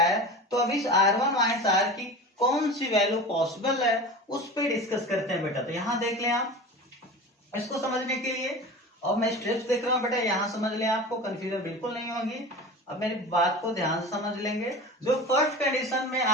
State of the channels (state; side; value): normal; both; correlation 0.32